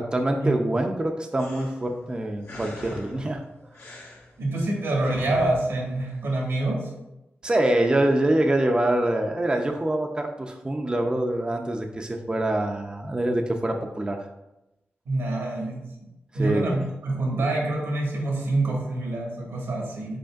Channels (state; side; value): normal; both; correlation 0.91